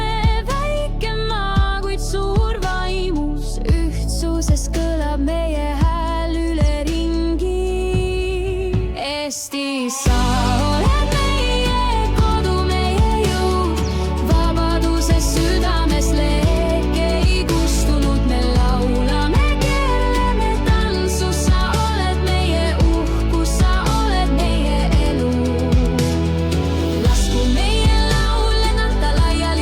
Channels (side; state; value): both; identical; correlation 1.00